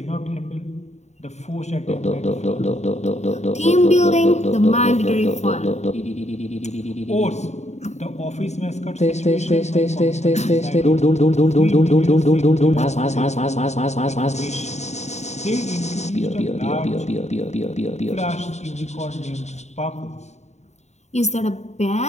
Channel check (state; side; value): late; right; 0.32 ms